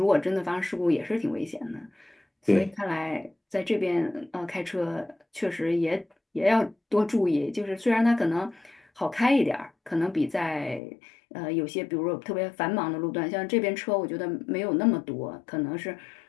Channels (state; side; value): drops out; right; at 10.8 s